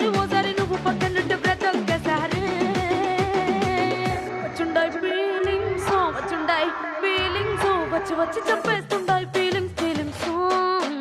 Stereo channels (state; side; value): identical; both; correlation 1.00